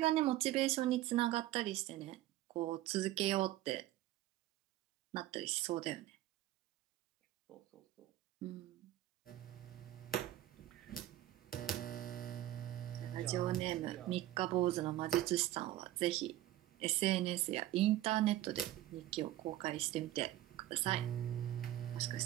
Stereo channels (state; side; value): quieter; left; 14.5 dB